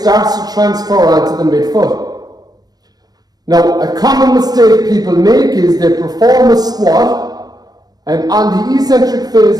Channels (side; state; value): left; late; 0.19 ms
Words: to transfer onto the midfoot. Now, a common mistake people make is they perform a squat, and on the eccentric phase